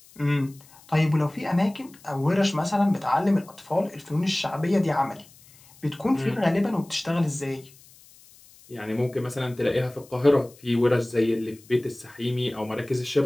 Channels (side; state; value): left; noise; hiss, 25 dB below the sound